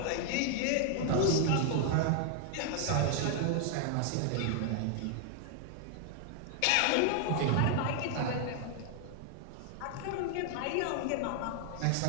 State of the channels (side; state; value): both; different; correlation 0.00